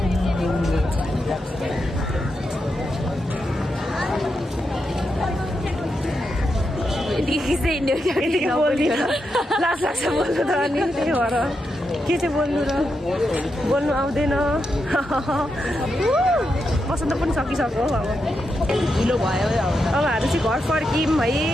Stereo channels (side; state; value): both; normal; correlation 0.85